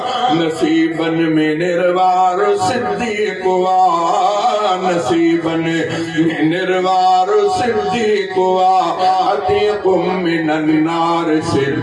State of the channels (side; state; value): both; identical; correlation 1.00